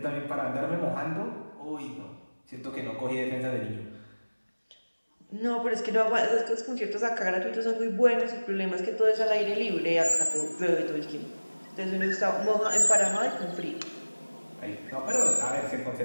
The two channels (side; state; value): both; inverted; correlation -1.00